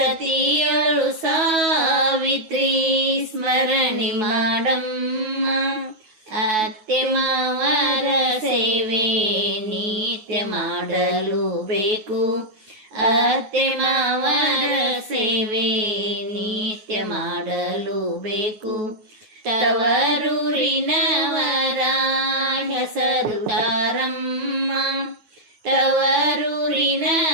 ಸಾವಿತ್ರಿ ಸ್ಮರಣೆ ಮಾಡಮ್ಮ. ಅತ್ತೆ ಮಾವರ ಸೇವೆ ನಿತ್ಯ ಮಾಡಲು ಬೇಕು, ಅತ್ತೆ ಮಾವರ ಸೇವೆ ನಿತ್ಯ ಮಾಡಲು ಬೇಕು. ತವರೂರಿನವರ ಹೆಸರು ತಾರಮ್ಮ,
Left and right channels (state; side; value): late; left; 9.3 ms